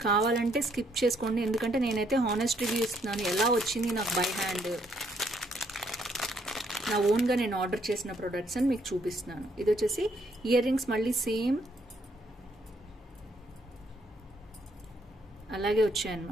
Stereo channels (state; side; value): normal; both; correlation 0.70